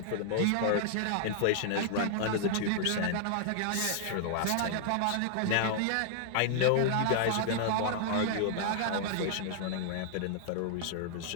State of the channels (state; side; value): different; both; correlation -0.01